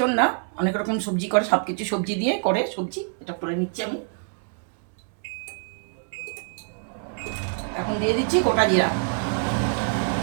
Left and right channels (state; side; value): silent; left; 55 dB below the other